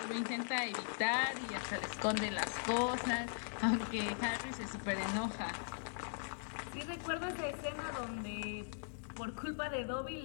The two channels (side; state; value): right; silent; digital silence